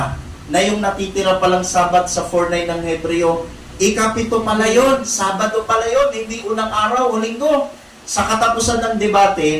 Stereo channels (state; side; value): identical; both; correlation 1.00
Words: na yung natitira palang Sabat sa 4:9 ng Hebreo, ikapito pala yun, Sabado pala yun, hindi unang araw o Linggo. Sa katapusan ng